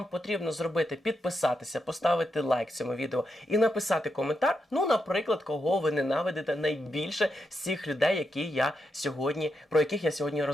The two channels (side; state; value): both; normal; correlation 0.84